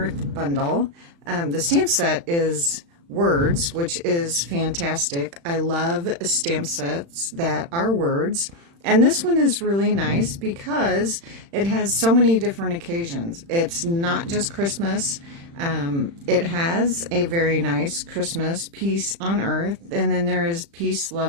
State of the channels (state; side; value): late; left; 35 ms